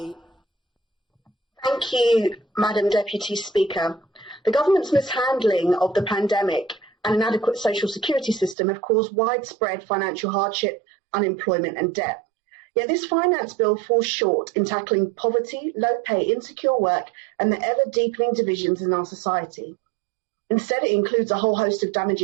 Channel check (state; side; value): drops out; left; at 8.6 s